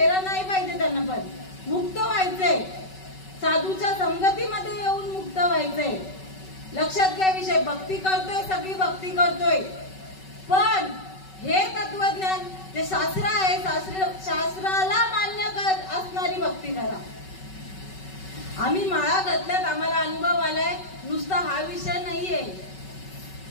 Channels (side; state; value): right; late; 5.3 ms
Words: नाही पाहिजे, त्यांना पण मुक्त व्हायचंय, साधूच्या संगतीमध्ये येऊन मुक्त व्हायचंय. लक्षात घ्या विषय, भक्ती करतोय, सगळी भक्ती करतोय, पण हे तत्वज्ञान जे शास्त्र आहे, शास्त्राला मान्य असणारी भक्ती करा. आम्ही माळा घातल्यात, आम्हाला अनुभव आलाय, नुसता हा विषय नाहीये,